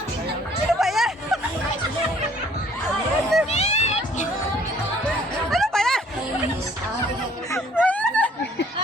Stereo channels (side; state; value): both; normal; correlation 0.59